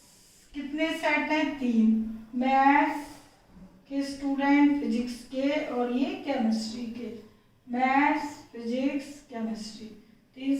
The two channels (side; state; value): both; identical; correlation 1.00